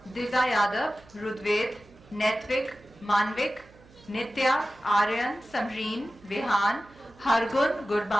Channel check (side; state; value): right; noise; hum, 26 dB below the sound